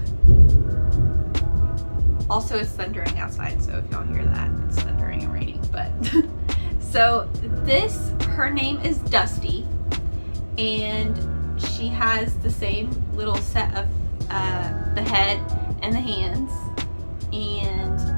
Also, it's thundering outside, so if y'all hear that, it's thundering and raining, but so this, her name is Dusty, and she has the same little set of the head and the hands, and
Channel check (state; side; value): inverted; both; correlation -1.00